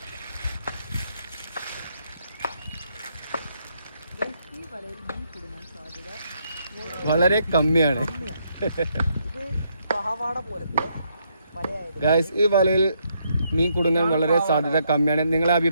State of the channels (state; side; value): inverted; both; correlation -0.75